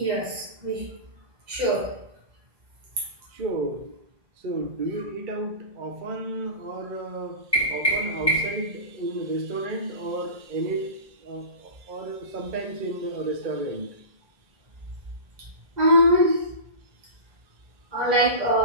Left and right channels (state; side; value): late; left; 2.0 ms